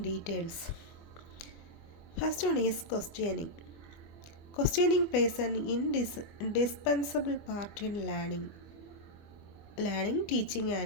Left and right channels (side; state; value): right; late; 25 ms